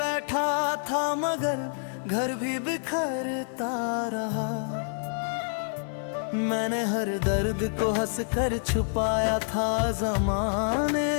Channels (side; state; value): right; silent; 58 dB below the other